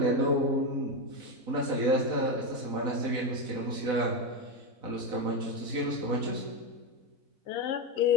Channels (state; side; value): late; left; 4.1 ms